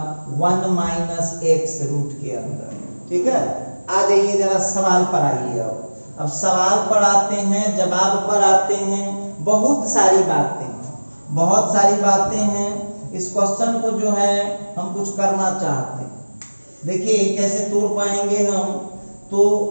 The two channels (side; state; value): both; inverted; correlation -1.00